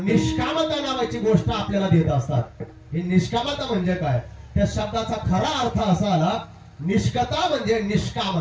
नावाची गोष्ट आपल्याला देत असतात. ही निष्कामता म्हणजे काय, त्या शब्दाचा खरा अर्थ असा आला, निष्कता म्हणजे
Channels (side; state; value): both; identical; correlation 1.00